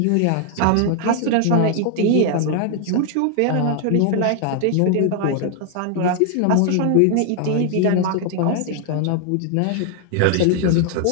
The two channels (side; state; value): both; different; correlation 0.00